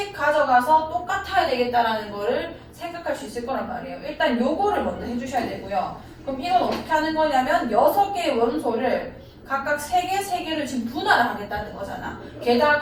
가져가서 똑같아야 되겠다라는 거를 생각할 수 있을 거란 말이에요. 일단 요거를 먼저 해주셔야 되고요. 그럼 이건 어떻게 하는 거냐면 6개의 원소를 각각 3개를 지금 분할을 하겠다는 거잖아.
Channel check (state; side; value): identical; both; correlation 1.00